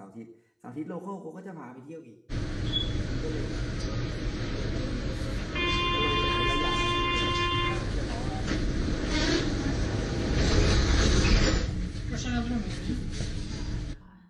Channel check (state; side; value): identical; both; correlation 1.00